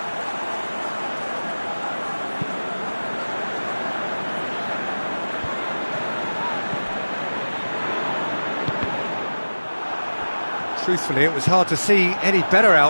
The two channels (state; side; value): inverted; both; correlation -1.00